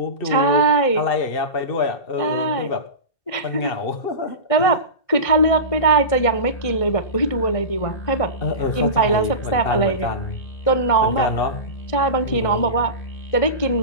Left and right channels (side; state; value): right; late; 1.6 ms